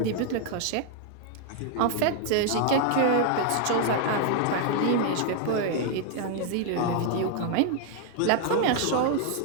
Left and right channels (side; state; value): both; different; correlation 0.00